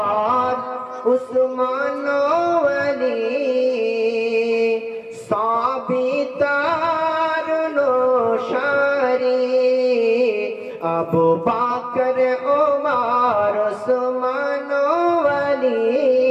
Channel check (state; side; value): identical; both; correlation 1.00